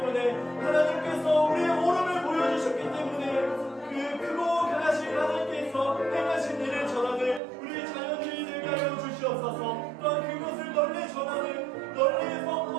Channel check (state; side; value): drops out; left; at 7.4 s